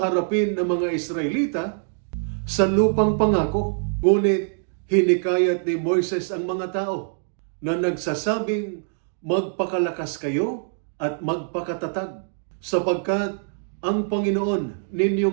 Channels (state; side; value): silent; left; digital silence